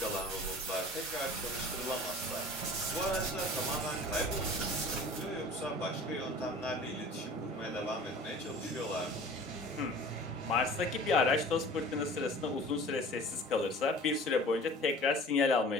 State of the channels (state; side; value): normal; both; correlation 0.44